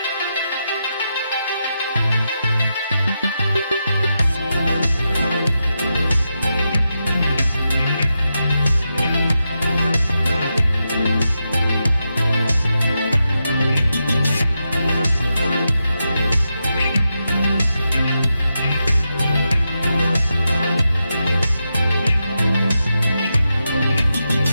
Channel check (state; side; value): inverted; both; correlation -0.87